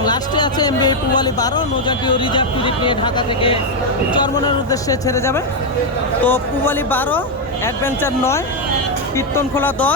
লাস্টে আছে এমবি পুবালি 12 নৌযানটিও রিজার্ভ ট্রিপ নিয়ে ঢাকা থেকে চরমনের উদ্দেশ্যে ছেড়ে যাবে। তো পুবালি 12, অ্যাডভেঞ্চার 9, কীর্তনখোলা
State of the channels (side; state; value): both; normal; correlation 0.02